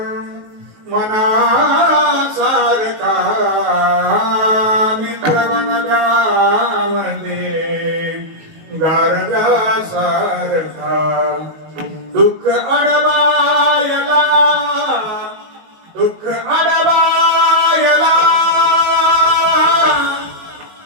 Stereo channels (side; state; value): left; late; 19 ms